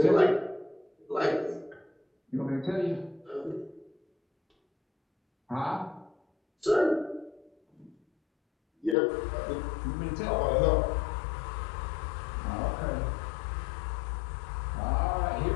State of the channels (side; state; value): right; drops out; at 9.0 s